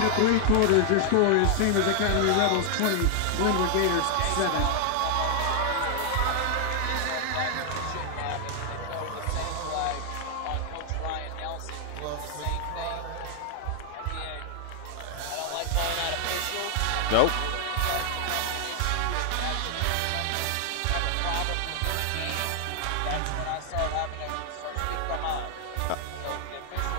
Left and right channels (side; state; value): both; different; correlation 0.00